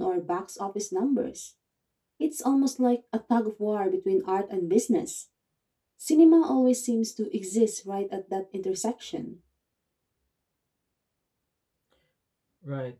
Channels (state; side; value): identical; both; correlation 1.00